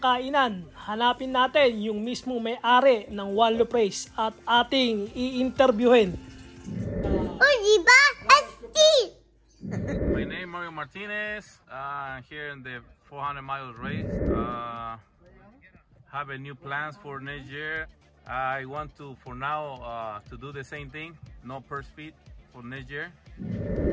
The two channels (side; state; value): both; identical; correlation 1.00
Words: kainan, hanapin natin yung mismong may-ari ng Wallow Praise at ating i-interviewin. My name is Mario Martinez. Here in the 400 mile race. Have a new plans for next year. I want to, for now, to do the same thing. No purse feed for next year,